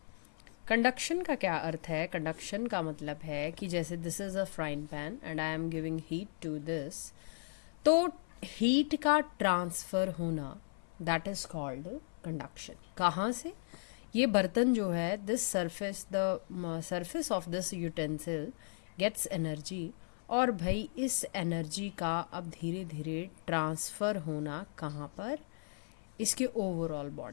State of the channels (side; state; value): right; silent; 54 dB below the other